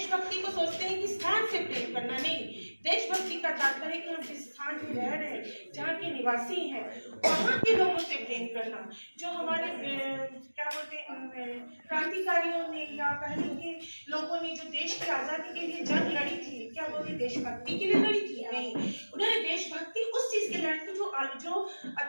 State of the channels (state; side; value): inverted; both; correlation -1.00